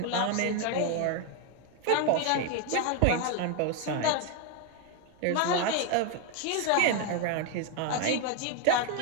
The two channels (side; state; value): both; different; correlation 0.01